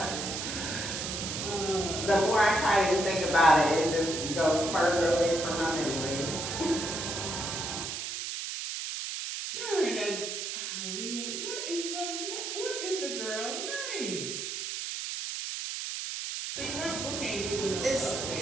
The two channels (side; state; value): right; noise; hiss, 4 dB below the sound